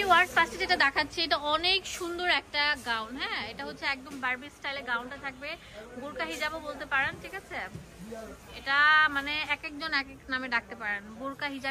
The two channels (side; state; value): both; identical; correlation 1.00